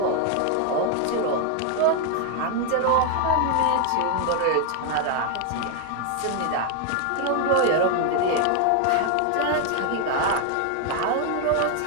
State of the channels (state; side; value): different; both; correlation 0.01